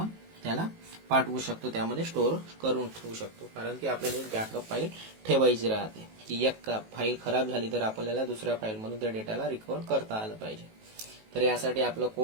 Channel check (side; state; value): left; late; 18 ms